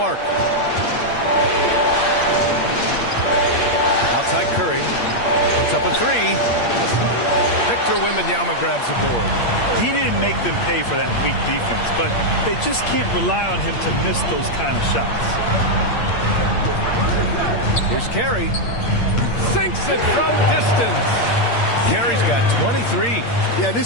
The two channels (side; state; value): right; late; 8.6 ms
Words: Outside Curry. Puts up a 3. Victor Wembanyama grabs the board. He didn't make them pay for that weak defense, but they just can't rely on him to miss those kind of shots. Here's Carey. Sinks it from distance. Carey's got 23. Yeah,